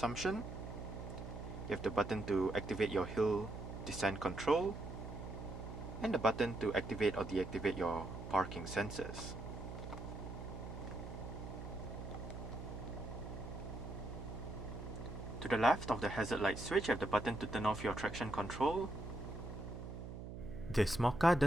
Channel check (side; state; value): right; noise; hum, 9 dB below the sound